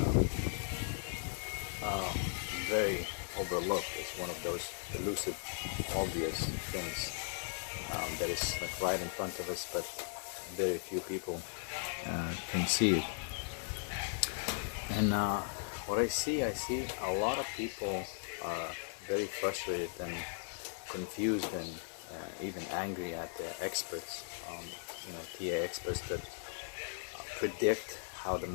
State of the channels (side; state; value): right; silent; digital silence